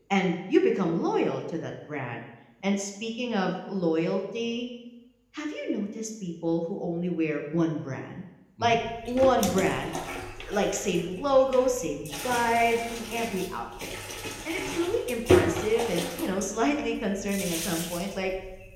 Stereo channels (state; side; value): identical; both; correlation 1.00